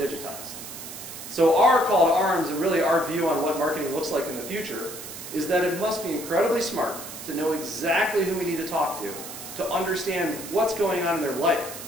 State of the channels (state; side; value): noise; right; hiss, 11 dB below the sound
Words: So our call to arms, and really our view on what marketing looks like in the future, is that it must be incredibly smart to know exactly who we need to talk to understand what's going on in their life,